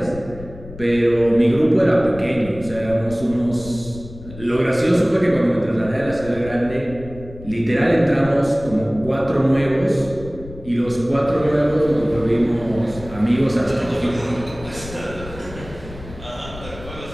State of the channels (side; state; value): left; noise; rumble, 15 dB below the sound